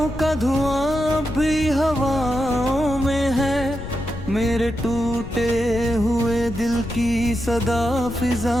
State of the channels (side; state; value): left; noise; rumble, 10 dB below the sound